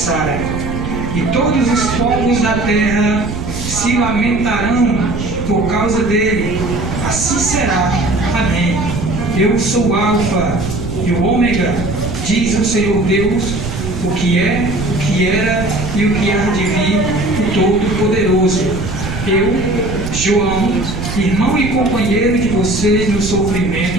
E todos os povos da terra se lamentarão por causa dele. Assim será. Amém. Eu sou o Alfa e o Ômega, diz o Senhor Deus, o que é, o que era e o que há de vir, o Todo-Poderoso. Eu, João, irmão e companheiro de vocês no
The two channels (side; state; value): right; noise; rumble, 6 dB below the sound